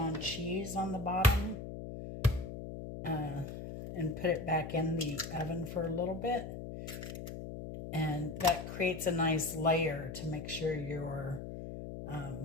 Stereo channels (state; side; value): noise; left; hum, 8 dB below the sound